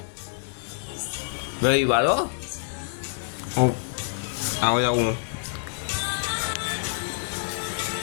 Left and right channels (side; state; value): right; silent; 58 dB below the other